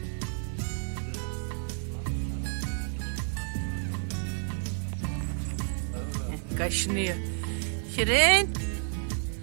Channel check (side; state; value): left; silent; 58 dB below the other